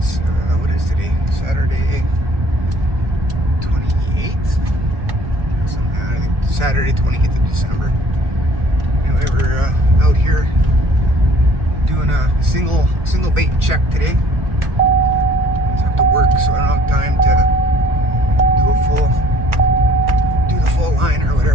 what is today? Saturday 28th? I think Saturday 28th of December. Anyway, we're out here doing a single bait check today. I have to work, so I don't have time to do the full line or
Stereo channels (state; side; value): late; left; 1.4 ms